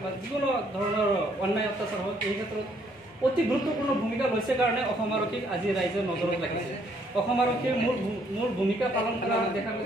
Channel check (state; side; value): normal; both; correlation 0.67